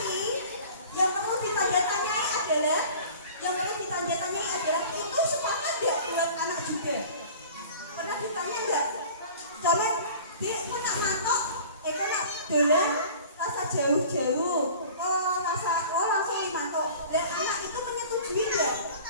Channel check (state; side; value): inverted; both; correlation -0.43